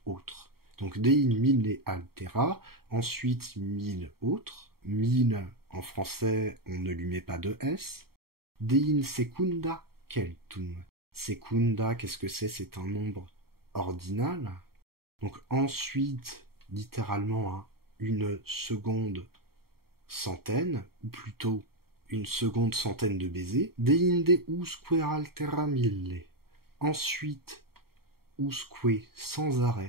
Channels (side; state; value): left; late; 0.94 ms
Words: autre. Donc dein mille altera, ensuite 1000 autres. 1000 en français, on ne lui met pas de S. Dein secunda keltum. Secunda, qu'est-ce que c'est? C'est un nombre ordinal. Donc ensuite, littéralement, hein, une seconde centaine, ou plutôt une seconde centaine de baisers. Deinde usque altera mille. Ensuite, usque sans